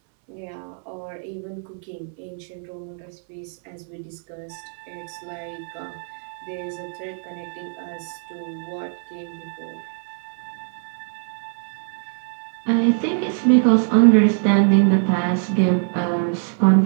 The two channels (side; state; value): left; silent; 63 dB below the other